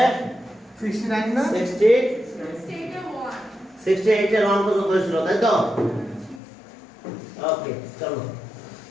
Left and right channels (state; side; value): drops out; right; at 6.4 s